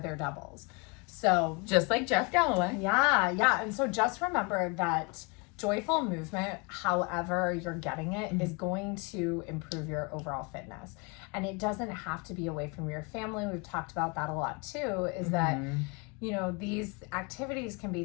doubles. So just like Jeff Galloway. Yeah. And so just remember that joyful movement, however you're getting it, is going to improve your overall fitness. And it doesn't have to be away from your family. We've talked about that a lot too, is that, you know, these activities can be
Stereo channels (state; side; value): quieter; right; 30.2 dB